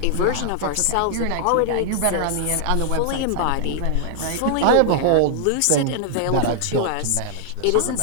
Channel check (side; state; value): both; different; correlation -0.01